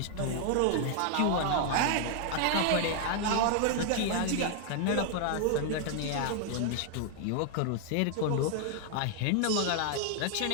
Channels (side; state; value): both; different; correlation 0.00